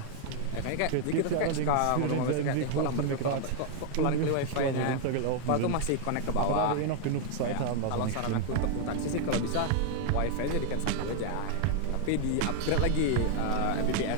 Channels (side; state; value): both; different; correlation 0.00